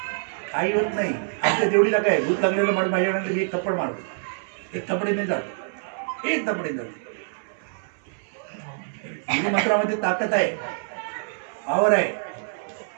काही होत नाही. आमच्या जेवढीला काय भूत लागलेलं माणूस माझ्याकडे मी एक थप्पड मारतो. एक थपडी नाही जात, एक थपडी जात. मंत्रामध्ये ताकद आहे, पावर आहे.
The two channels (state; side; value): silent; left; 61 dB below the other